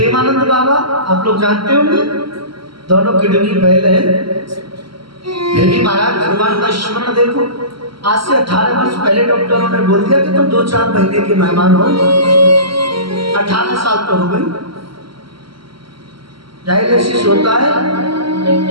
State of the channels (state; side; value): late; left; 0.74 ms